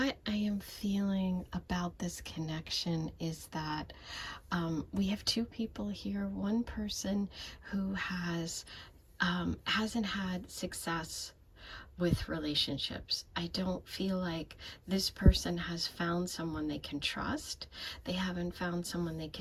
I am feeling about this connection is that we have 2 people here. One person who hasn't had success with relationships. I don't feel like this person has found someone they can trust. They haven't found someone they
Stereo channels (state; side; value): identical; both; correlation 1.00